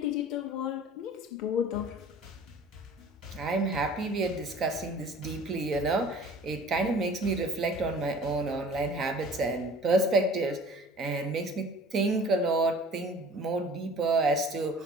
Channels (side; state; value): both; normal; correlation 0.47